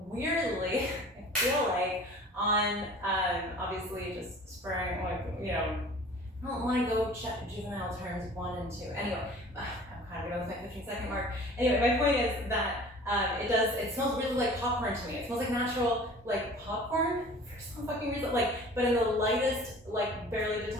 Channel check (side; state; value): both; normal; correlation 0.45